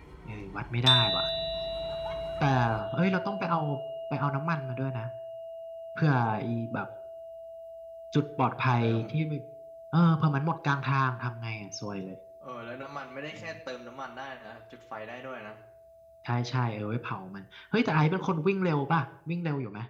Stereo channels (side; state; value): both; identical; correlation 1.00